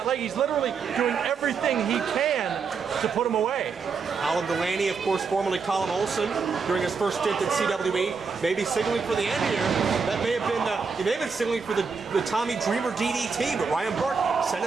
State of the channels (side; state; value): left; quieter; 5.3 dB